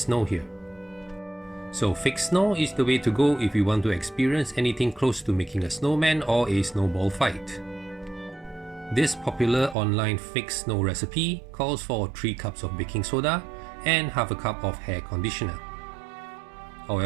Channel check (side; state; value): left; drops out; at 9.8 s